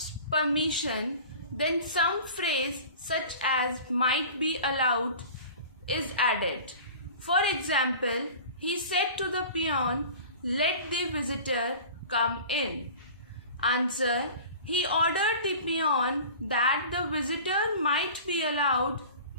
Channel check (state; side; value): inverted; both; correlation -0.40